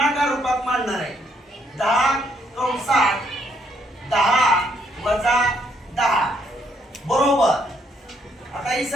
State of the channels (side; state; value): both; normal; correlation 0.71